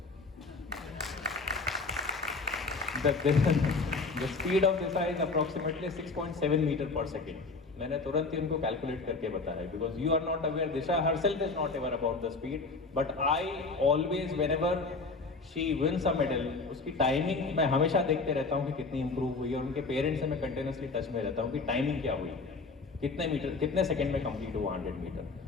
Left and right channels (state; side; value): quieter; right; 3.9 dB